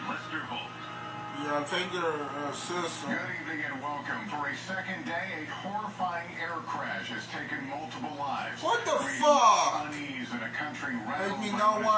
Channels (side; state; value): both; identical; correlation 1.00